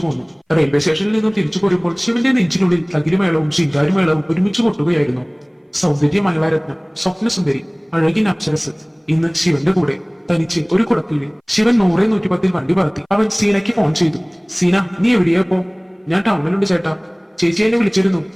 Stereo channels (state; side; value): identical; both; correlation 1.00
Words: പോന്നു. റെയിൽവേ സ്റ്റേഷനിൽ നിന്നും തിരിച്ചു പോരുമ്പോൾ ശിവന്റെ നെഞ്ചിനുള്ളിൽ തകിലുമേളവും ശിങ്കാരിമേളവും ഒരുമിച്ച് കൊട്ടുകയായിരുന്നു. സൗന്ദര്യ മംഗളാരത്നം, സ്വപ്നസുന്ദരി, അഴകിൻ അപ്സരസ് ഇന്ന് ശിവന്റെ കൂടെ തനിച്ച് ഒരു കുടക്കീഴിൽ. ശിവൻ 100-110 വണ്ടി പറത്തി. അവൻ സീനയ്ക്ക് ഫോൺ ചെയ്തു. സീന, നീ എവിടെയാ ഇപ്പോ? ഞാൻ ടൗണിലുണ്ട് ചേട്ടാ. ചേച്ചി എന്നെ വിളിച്ചിരുന്നു.